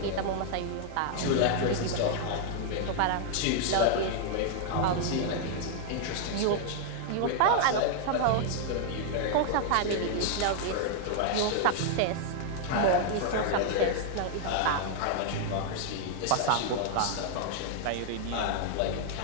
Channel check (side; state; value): both; different; correlation 0.00